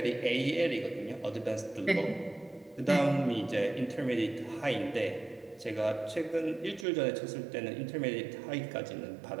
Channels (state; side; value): drops out; left; at 6.9 s